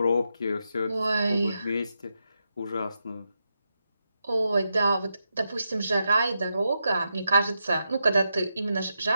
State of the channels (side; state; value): both; inverted; correlation -0.86